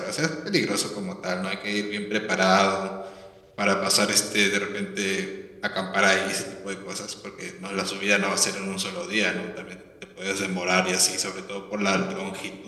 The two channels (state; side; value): identical; both; correlation 1.00